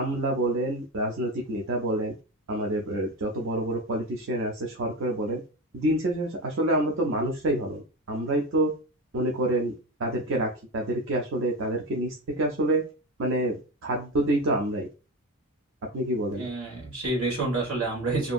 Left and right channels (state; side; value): normal; both; correlation 0.22